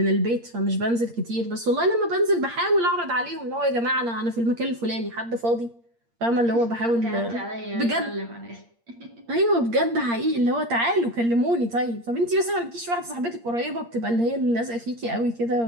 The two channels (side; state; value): left; late; 8.6 ms